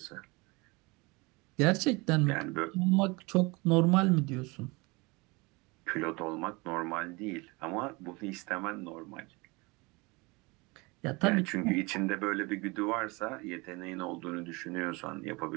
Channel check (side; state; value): left; quieter; 25.8 dB